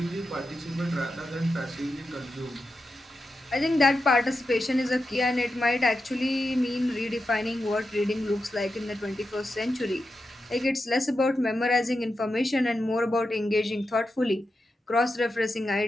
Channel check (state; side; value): normal; both; correlation 0.89